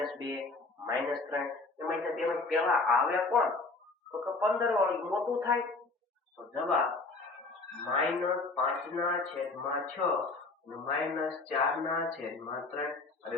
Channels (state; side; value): quieter; right; 3.6 dB